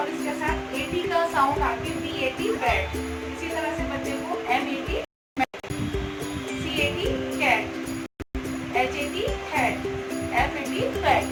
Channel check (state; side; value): identical; both; correlation 1.00